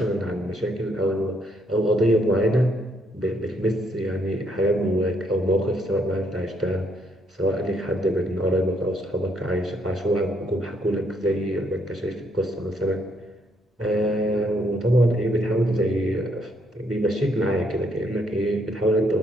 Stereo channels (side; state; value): both; normal; correlation 0.72